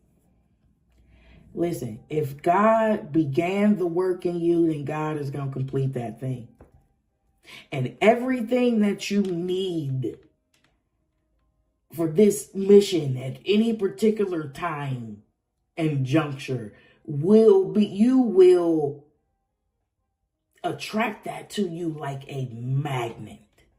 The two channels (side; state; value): both; identical; correlation 1.00